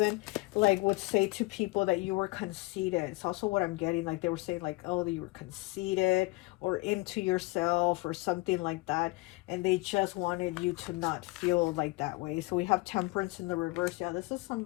like would say to people that you were conceited. It's also what I'm getting, like they were saying like, oh, that you were conceited or into yourself or something like that, and they just wanted you to not feel like that way. So we have Temperance in the reverse. Yeah, this is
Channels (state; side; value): quieter; right; 23.6 dB